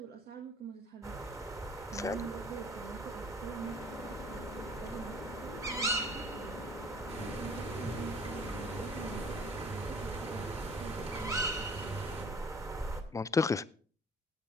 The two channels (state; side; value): normal; both; correlation 0.52